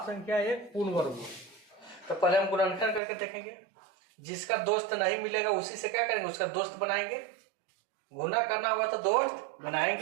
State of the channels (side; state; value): left; drops out; at 3.0 s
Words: संख्या एक पूर्ण वर्ग हो। तो पहले हम गुणनखंड करके देखेंगे। जिसका दोस्त नहीं मिलेगा उसी से क्या करेंगे? उसका दोस्त बनाएंगे। गुना करना होगा तो दोस्त